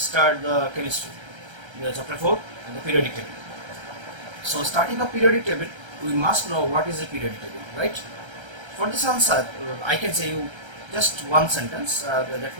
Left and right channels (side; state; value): left; late; 1.3 ms